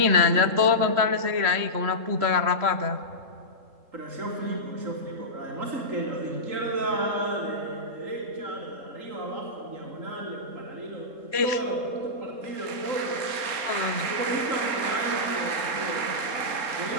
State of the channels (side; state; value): left; late; 3.7 ms